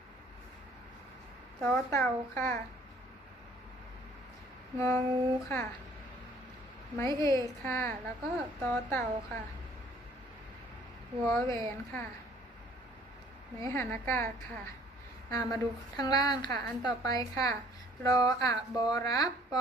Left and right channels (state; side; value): normal; both; correlation 0.57